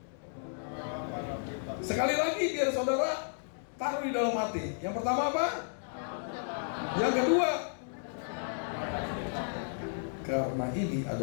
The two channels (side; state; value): right; silent; digital silence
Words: sekali lagi biar saudara taruh di dalam hati. Yang pertama apa? Yang kedua, karena ini